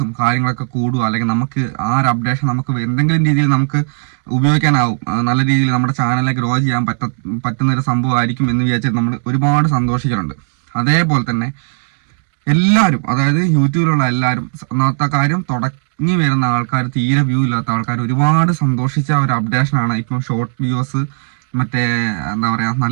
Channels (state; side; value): silent; left; digital silence